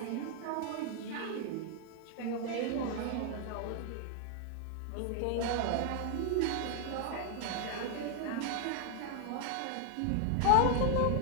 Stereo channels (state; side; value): different; both; correlation 0.00